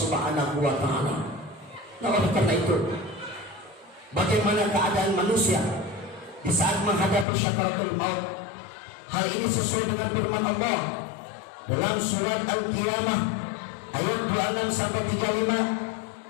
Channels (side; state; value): right; drops out; at 7.2 s